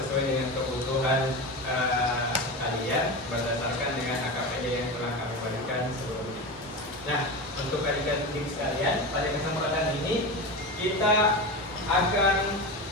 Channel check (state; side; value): normal; both; correlation 0.23